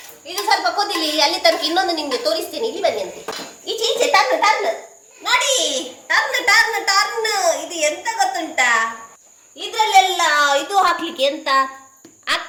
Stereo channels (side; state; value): both; identical; correlation 1.00